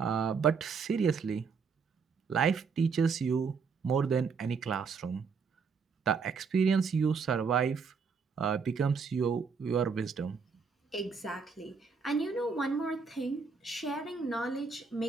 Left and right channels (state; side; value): quieter; left; 5.4 dB